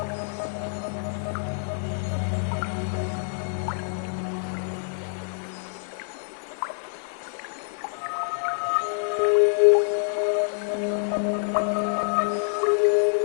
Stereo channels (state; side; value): silent; right; 61 dB below the other